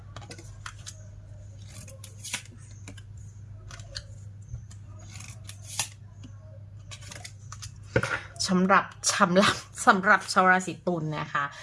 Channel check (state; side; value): identical; both; correlation 1.00